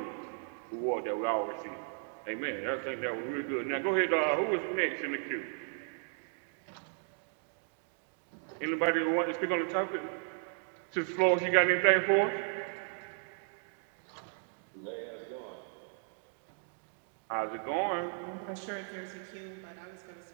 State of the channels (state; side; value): silent; left; 54 dB below the other